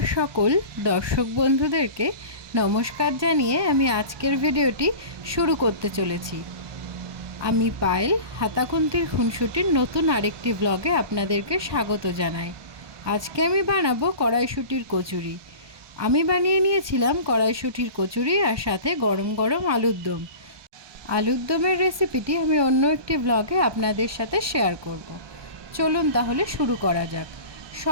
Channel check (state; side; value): late; left; 1.2 ms